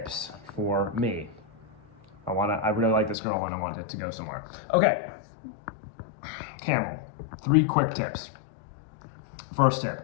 for me? I really like this girl and I want it to go somewhere. Okay, Camel, 3 quick tips. First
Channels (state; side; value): drops out; right; at 3.2 s